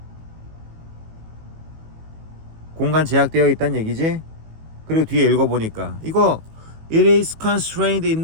공간 제약되어 있다는 얘기지? 그리고 뒤에 읽어보니까 이거 It is constrained in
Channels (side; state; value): left; late; 18 ms